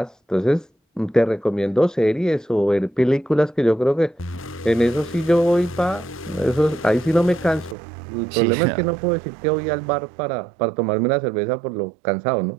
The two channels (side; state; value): left; drops out; at 7.8 s